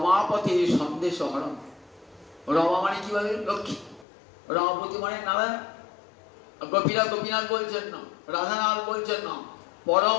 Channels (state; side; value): drops out; right; at 4.0 s